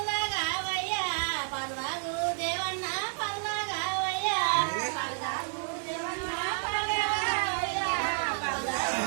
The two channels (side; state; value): left; silent; 58 dB below the other